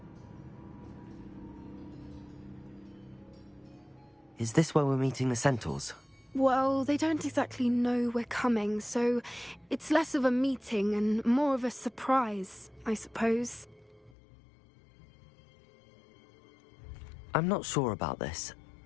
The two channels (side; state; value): right; drops out; at 14.2 s